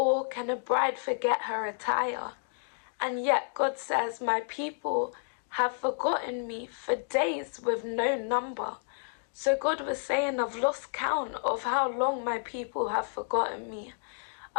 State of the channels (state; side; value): silent; right; digital silence